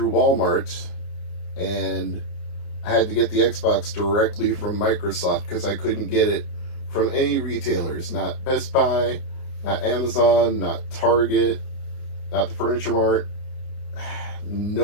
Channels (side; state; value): right; late; 30 ms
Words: Walmart and I had to get the Xbox directly from Microsoft because I couldn't get it from any retailers, not Best Buy, not Amazon, not Target, not the Furniture Mart.